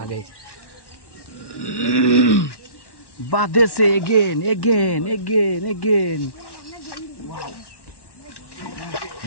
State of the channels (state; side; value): late; right; 1.1 ms